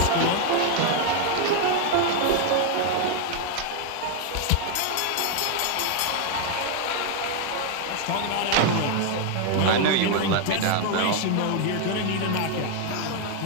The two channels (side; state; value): both; different; correlation 0.00